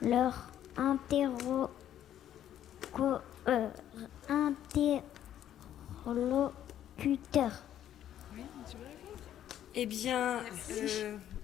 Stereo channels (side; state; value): right; quieter; 11.1 dB